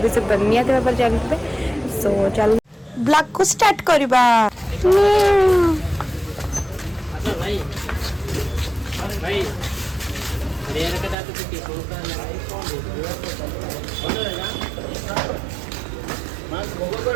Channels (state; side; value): drops out; left; at 11.2 s